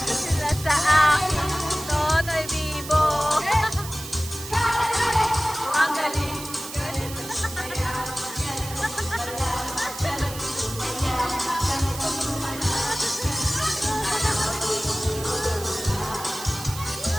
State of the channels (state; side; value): noise; right; hiss, 11 dB below the sound